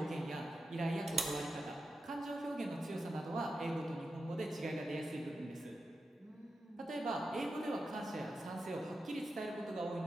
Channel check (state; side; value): normal; both; correlation 0.90